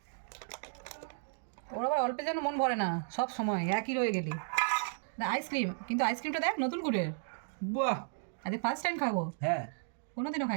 ওর আবার অল্পে যেন মন ভরে না, সব সময় একই রয়ে গেলি। আইসক্রিম, কিন্তু আইসক্রিমটা দেখ নতুন গুড়ের। বাহ, আজকে ফার্স্ট টাইম খাবো, হ্যাঁ। কোনোদিনও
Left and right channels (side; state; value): left; silent; digital silence